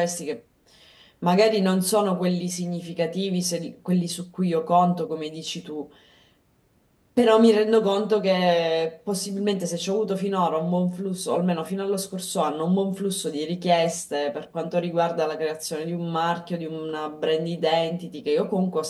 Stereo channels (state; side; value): identical; both; correlation 1.00